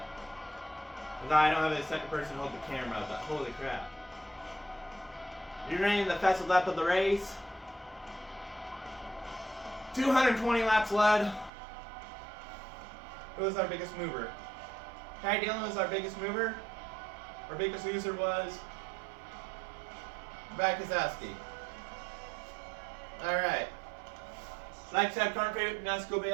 I don't have a second person hold the camera. But holy crap. You're running the fastest lap of the race. 220 laps led. Who was our biggest mover? Ty Dillon was our biggest mover. Our biggest loser was Brad Keselowski. Alright. Like, subscribe, comment, favorite, NASCAR Cup Series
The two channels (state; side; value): drops out; left; at 11.5 s